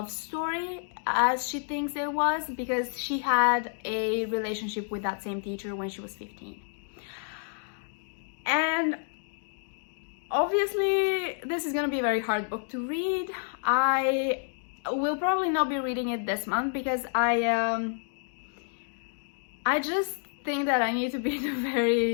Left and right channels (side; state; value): right; silent; 58 dB below the other